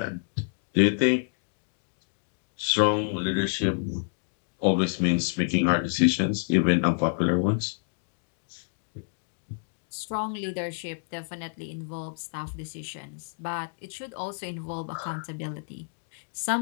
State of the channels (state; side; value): silent; right; digital silence